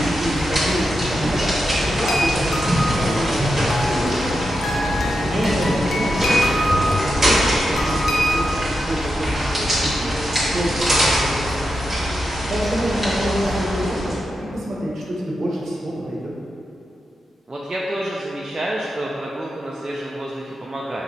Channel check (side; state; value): both; normal; correlation 0.88